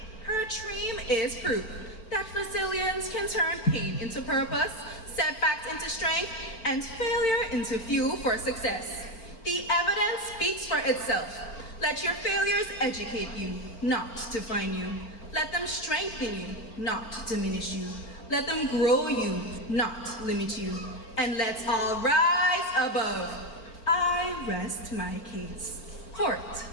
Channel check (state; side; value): late; right; 4.4 ms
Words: Her dream is proof that resilience can turn pain into purpose, setbacks into strength, and failure into fuel for success. The evidence speaks for itself. Let your failures educate you, not define you. Let them strengthen you, not diminish you. Let them grow you, not limit you. And let's all rise above. I rest my case. Court